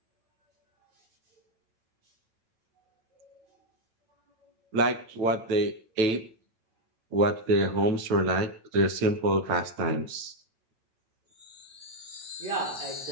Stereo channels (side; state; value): left; late; 9.0 ms